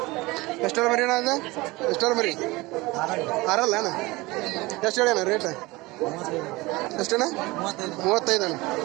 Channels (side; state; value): left; quieter; 21.8 dB